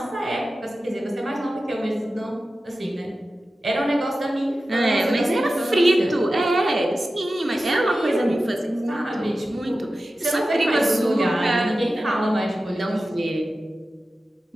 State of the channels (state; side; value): normal; both; correlation 0.94